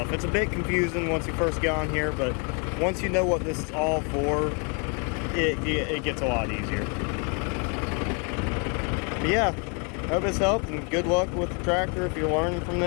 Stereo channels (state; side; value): quieter; right; 35.7 dB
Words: It's a bit confusing once you first get on here, but once you know what this is all for, it gets a lot easier. But yeah, hope this helped, and good luck with the tractor if you're learning from